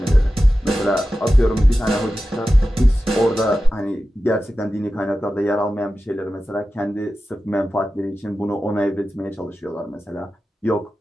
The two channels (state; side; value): normal; both; correlation 0.93